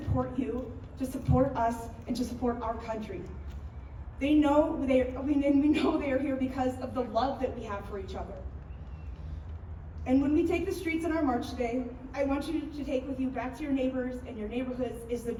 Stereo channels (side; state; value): both; identical; correlation 1.00